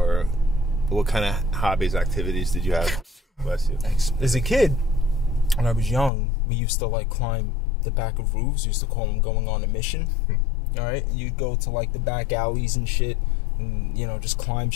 what kind of hobbies, activities did you have? Bless you. As a kid, when I was young, we used to like climb the back of roofs. We used to call them going on a mission. All right, you'd go to like the back alleys and shit, and just climb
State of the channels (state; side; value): drops out; right; at 6.1 s